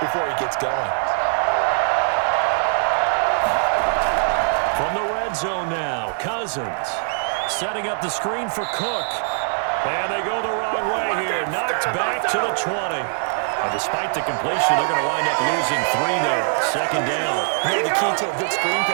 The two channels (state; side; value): silent; left; digital silence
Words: before he gets going? From the red zone now, Cousins. Setting up the screen for Cook. And they go the wrong way here. Knocked back to the 20. And despite the completion, they're going to wind up losing 3 there. 2nd down. You know the key to a good screen